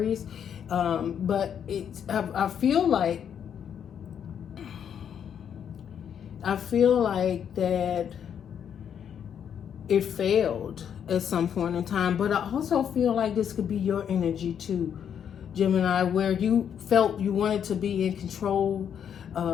But I feel like that it failed at some point in time. But I also feel like this could be your energy too, Gemini, where you felt you wanted to be in control.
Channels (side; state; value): right; quieter; 8.5 dB